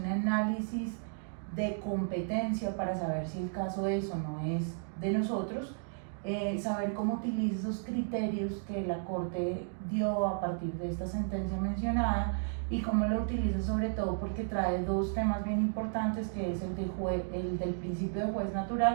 análisis de competencia para saber si el caso es o no es de nosotros, saber cómo utiliza esos criterios que la Corte dio a partir de esta sentencia mencionada y cómo lo utiliza, sobre todo porque trae dos temas bien importantes, que es el del principio de juez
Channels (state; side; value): silent; left; digital silence